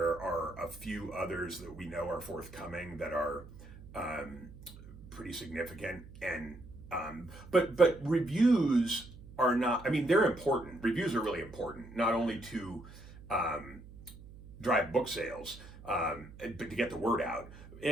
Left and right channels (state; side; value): noise; right; hum, 18 dB below the sound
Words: are a few others that we know are forthcoming that are pretty significant. And but reviews are not, they're important. Reviews are really important, not only to drive book sales, but to get the word out.